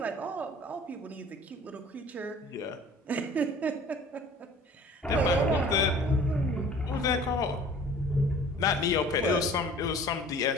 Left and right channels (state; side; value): normal; both; correlation 0.47